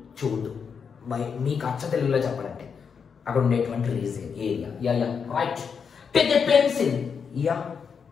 చోటు, మీకు అచ్చ తెలుగులో చెప్పాలంటే అక్కడ ఉండేటువంటి reason area. Right. Take a pencil,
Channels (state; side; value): quieter; right; 6.3 dB